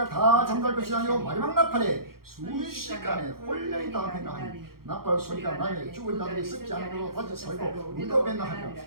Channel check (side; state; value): left; late; 0.93 ms